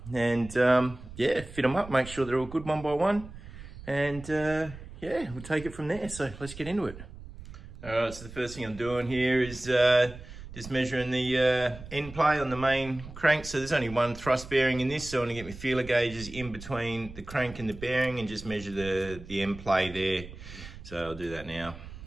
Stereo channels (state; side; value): noise; right; rumble, 15 dB below the sound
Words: And yeah, fit them up, make sure they're all good one by one. And yeah, we'll take it from there. So let's get into it. All right, so the first thing I'm doing here is just measuring the end play on the main crank. So there's only one thrust bearing in this, so I'm gonna get my feeler gauges in between the crank and the bearing and just measure the end play there. So I'll do that now.